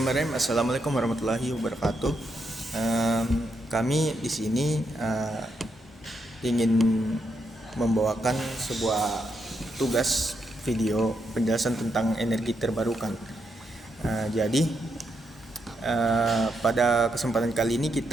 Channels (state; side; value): normal; both; correlation 0.81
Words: Assalamualaikum warahmatullahi wabarakatuh. Kami di sini ingin membawakan sebuah tugas video penjelasan tentang energi terbarukan. Jadi pada kesempatan kali ini